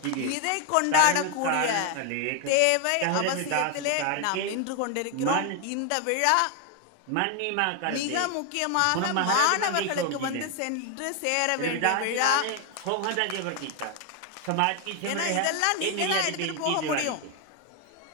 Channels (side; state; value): both; different; correlation 0.01